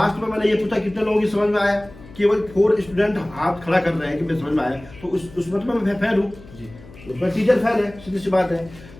में मैंने ये पूछा कितने लोगों की समझ में आया, केवल 4 स्टूडेंट हाथ खड़ा कर रहे हैं कि मैं समझ में आया, तो उसमें तो मैं फेल हूँ, उसमें टीचर फेल है, सीधी सी बात है।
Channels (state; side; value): noise; left; hum, 20 dB below the sound